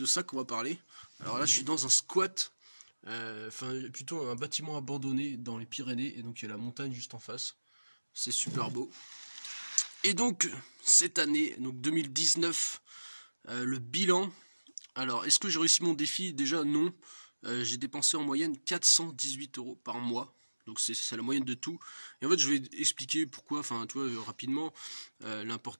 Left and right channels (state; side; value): inverted; both; correlation -1.00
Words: ça qu'on va parler. Alors là, je suis dans un squat, enfin plutôt un bâtiment abandonné dans les Pyrénées, et donc il y a la montagne juste en face. C'est super beau. Et donc cette année, donc 2019, le bilan. Alors, est-ce que j'ai réussi mon défi? Déjà non. J'ai dépensé en moyenne 418 € par mois. Donc c'est la moyenne de tout. Et en fait, je vais expliquer pourquoi. Enfin, tu vois, rapidement.